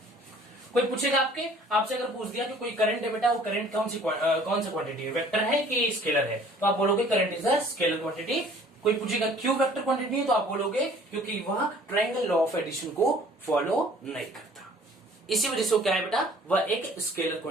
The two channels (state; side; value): normal; both; correlation 0.53